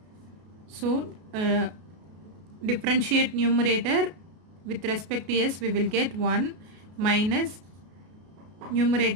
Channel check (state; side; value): late; left; 33 ms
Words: so differentiate numerator with respect to s, we will get 1 minus